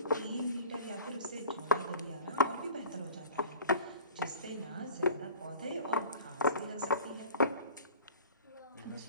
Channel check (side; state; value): both; inverted; correlation -0.41